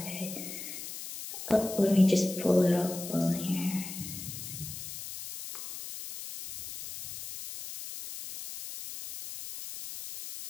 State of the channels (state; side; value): noise; left; hiss, 9 dB below the sound